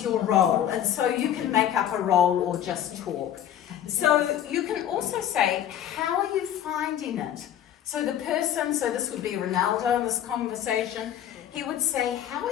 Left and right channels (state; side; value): quieter; right; 10.7 dB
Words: your role? And so you can make up a role or just talk. So you can also say, how are you finding it? So the person, so this would be Ronaldo in this conversation, he would say, how are